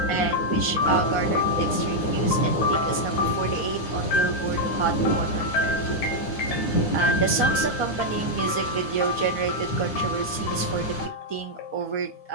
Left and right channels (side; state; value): right; late; 9.8 ms